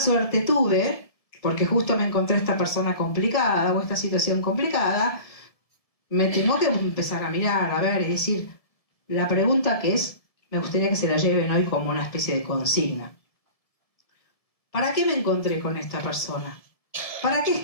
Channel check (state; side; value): late; right; 1.7 ms